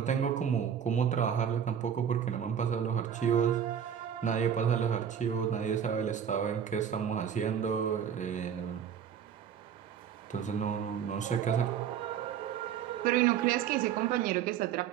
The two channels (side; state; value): left; quieter; 8.4 dB